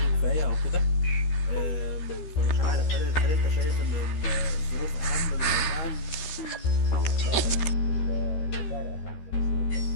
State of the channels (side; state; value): right; late; 13 ms